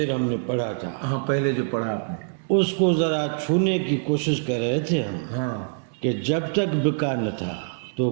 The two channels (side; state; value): left; silent; 61 dB below the other